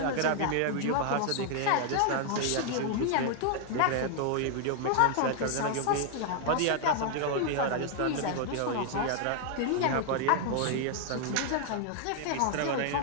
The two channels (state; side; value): different; both; correlation 0.00